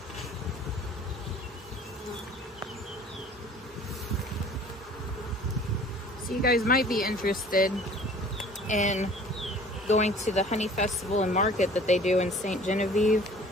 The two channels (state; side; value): normal; both; correlation 0.49